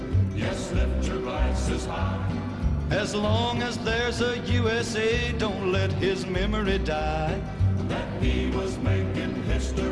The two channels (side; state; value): both; identical; correlation 1.00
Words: Yes, lift your glasses high. As long as there's a USA, don't let his memory die. That he was making